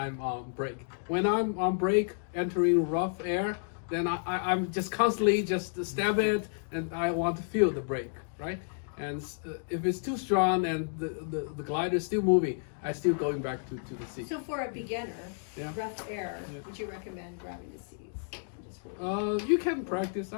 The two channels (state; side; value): silent; right; digital silence